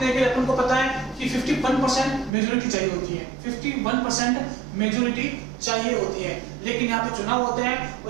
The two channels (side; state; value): left; drops out; at 2.3 s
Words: के लिए अपन को पता है कि 51% मेजोरिटी चाहिए होती है, 51% मेजोरिटी चाहिए होती है। लेकिन यहाँ पे चुनाव होते हैं